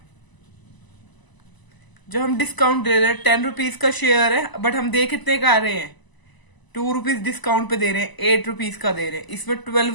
जो हम डिस्काउंट दे रहे हैं 10 रुपीज का शेयर है, बट हम दे कितने का रहे हैं, 2 रुपीज डिस्काउंट पे दे रहे हैं, 8 रुपीज का दे रहे हैं। इसमें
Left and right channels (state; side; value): late; right; 1.0 ms